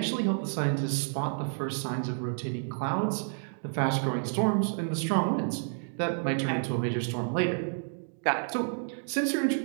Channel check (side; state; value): left; silent; digital silence